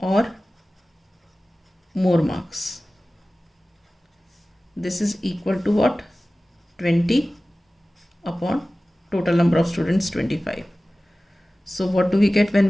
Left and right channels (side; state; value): both; normal; correlation 0.97